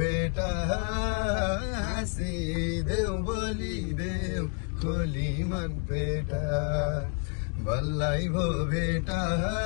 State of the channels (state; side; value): quieter; right; 37.0 dB